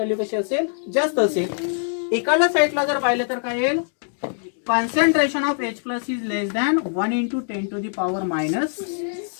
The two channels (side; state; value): right; silent; digital silence